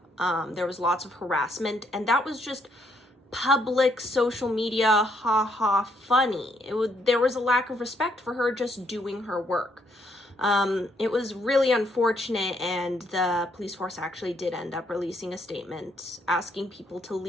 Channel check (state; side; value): normal; both; correlation 0.72